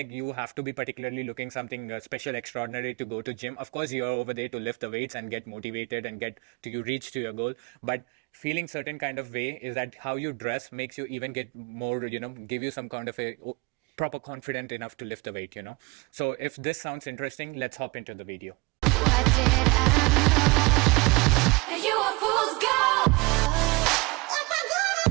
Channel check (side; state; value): left; quieter; 25.3 dB